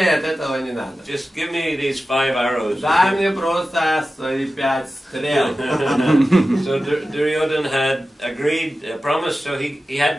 этого не надо. Just give me these 5 arrows. Дай мне просто свои 5 стрел. So Duryodhana had agreed, promised, so he had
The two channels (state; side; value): normal; both; correlation 0.94